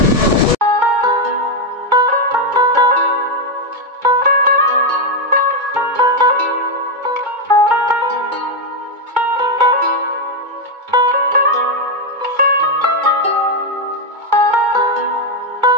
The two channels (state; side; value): late; left; 2.2 ms